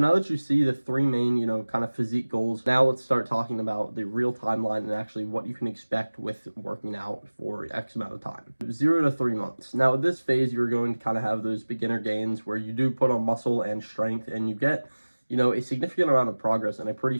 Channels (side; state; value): both; inverted; correlation -1.00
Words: now that you see the 3 main, kind of physique goals, now let's start talking about the real timeline and actually what you can expect with working out for X amount of time. 0 to 3 months. Now at this phase, you're going to kind of have those beginner gains where you do put on muscle and strength, and you get a significant amount of progress in a pretty